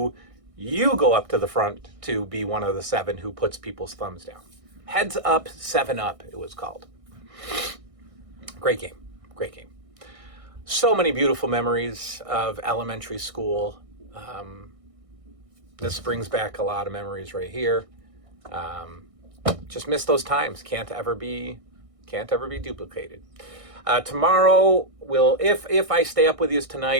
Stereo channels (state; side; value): late; left; 1.6 ms